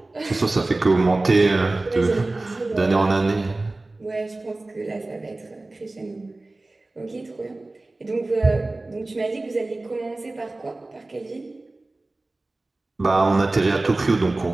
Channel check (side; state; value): left; quieter; 3.0 dB